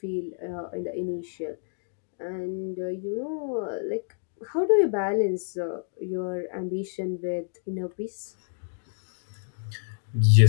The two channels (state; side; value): silent; right; digital silence